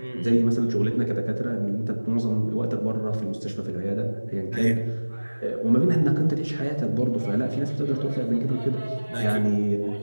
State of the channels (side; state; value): both; inverted; correlation -1.00